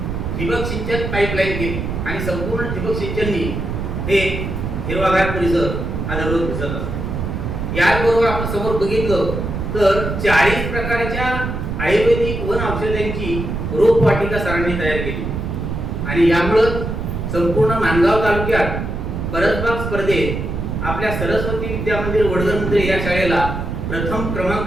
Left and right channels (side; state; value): right; noise; rumble, 4 dB below the sound